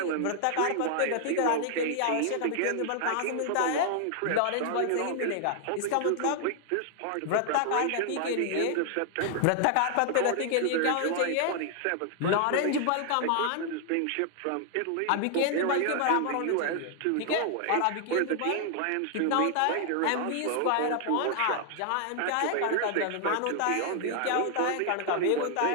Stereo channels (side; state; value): both; different; correlation 0.00